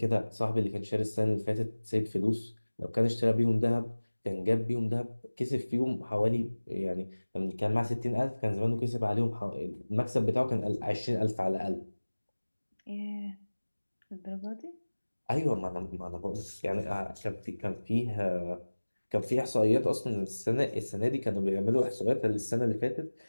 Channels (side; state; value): both; inverted; correlation -1.00